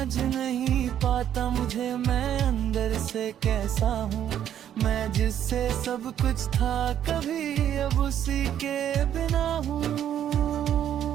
नहीं पाता मुझे मैं अंदर से कैसा हूँ। मैं जिससे सब कुछ था कभी अब उसी के बिना हूँ।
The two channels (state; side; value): quieter; left; 10.3 dB